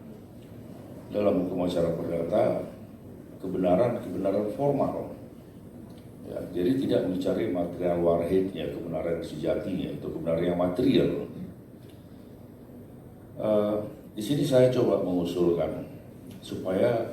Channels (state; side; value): identical; both; correlation 1.00